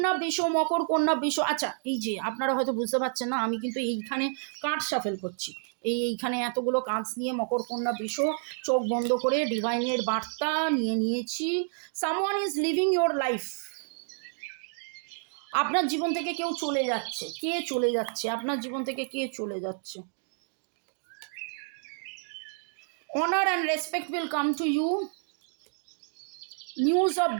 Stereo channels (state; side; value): silent; left; 58 dB below the other